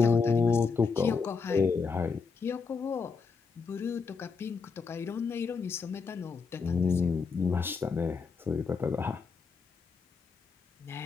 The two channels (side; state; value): right; quieter; 5.1 dB